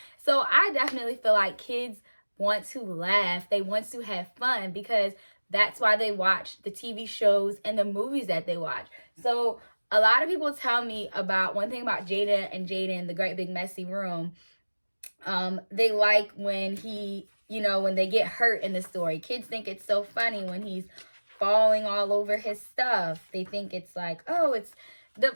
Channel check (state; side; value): inverted; both; correlation -1.00